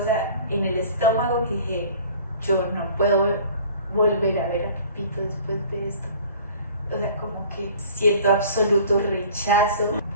en el estómago que dije, yo no puedo volver a ver a Pepito después de esto. O sea, como que siento absoluto rechazo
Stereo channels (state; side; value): inverted; both; correlation -0.48